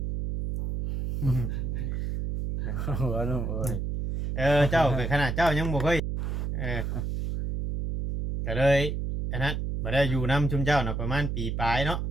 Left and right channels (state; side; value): noise; right; hum, 2 dB below the sound